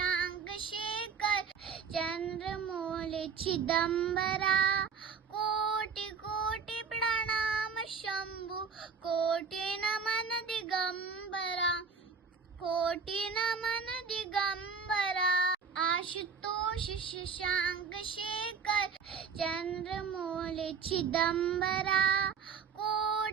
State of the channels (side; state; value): left; quieter; 5.8 dB